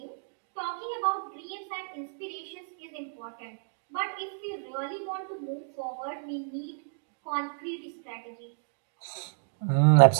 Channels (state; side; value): silent; left; digital silence